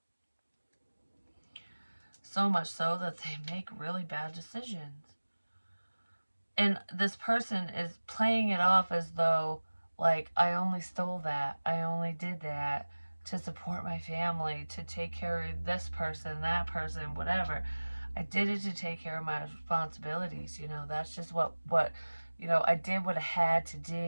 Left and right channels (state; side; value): inverted; both; correlation -1.00